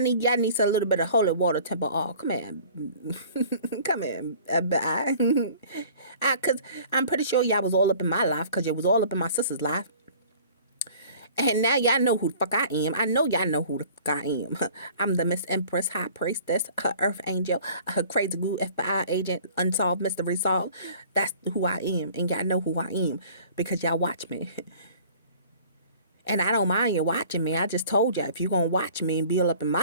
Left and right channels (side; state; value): both; inverted; correlation -0.49